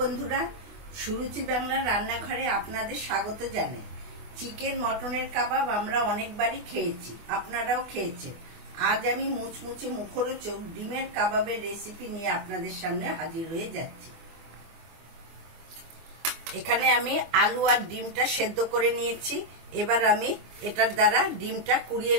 সুরুচি বাংলার রান্নাঘরে আপনাদের স্বাগত জানাই। চিকেন মটনের কাবাব আমরা অনেকবারই খেয়েছি, আপনারাও খেয়েছেন। আজ আমি মুচমুচে মুখরোচক ডিমের কাবাবের রেসিপি নিয়ে আপনাদের সামনে হাজির হয়ে যাচ্ছি। এখানে আমি আলু আর ডিমটা সেদ্ধ করে নিয়েছি। এবার আমি এটার দ্বারা ডিমটা কুড়িয়ে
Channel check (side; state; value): left; late; 24 ms